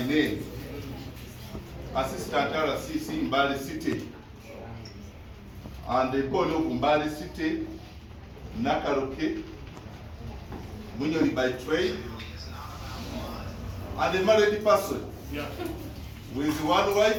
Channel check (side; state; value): both; identical; correlation 1.00